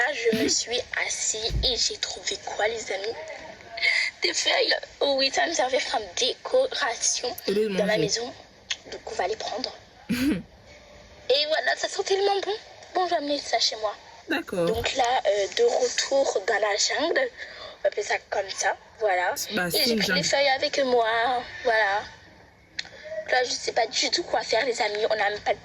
je me suis assise et j'ai trouvé quoi, les amis? Des feuilles. Oh oui, ça va me servir comme décoration dans ma maison. Donc on va les prendre. Et voilà, ça sent tellement bon. Bon, je vais amener ça chez moi. D'accord. Donc là, de retour dans la jungle, on va appeler ça comme ça, voilà. Bah, et j'ai pris les feuilles avec moi, voilà. Là, je sais pas du tout quoi faire, les amis. On n'a même pas de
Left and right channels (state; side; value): identical; both; correlation 1.00